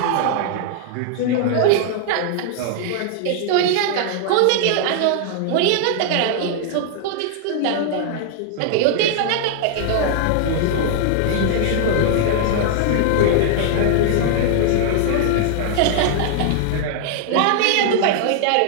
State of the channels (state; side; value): different; both; correlation -0.01